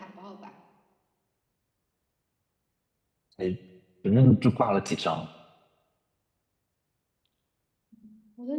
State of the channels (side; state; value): both; identical; correlation 1.00